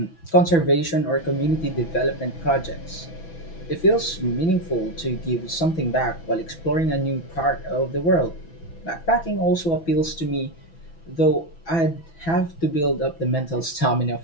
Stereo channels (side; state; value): right; late; 6.0 ms